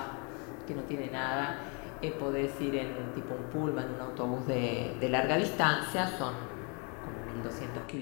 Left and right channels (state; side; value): quieter; right; 34.5 dB